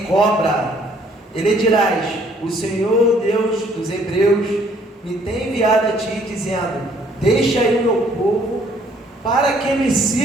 cobra. E lhe dirás: o Senhor Deus dos Hebreus me tem enviado a ti, dizendo: deixa aí o meu povo, para que me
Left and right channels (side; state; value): both; normal; correlation 0.62